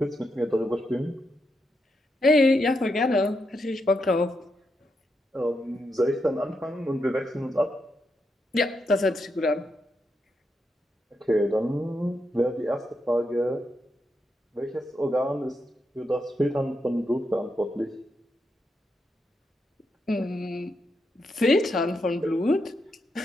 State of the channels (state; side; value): normal; both; correlation 0.83